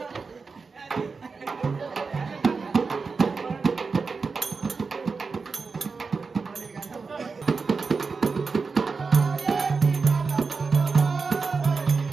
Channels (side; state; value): left; quieter; 4.7 dB